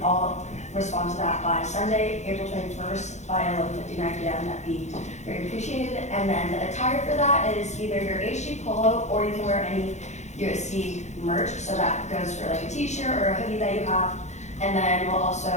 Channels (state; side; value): late; right; 0.33 ms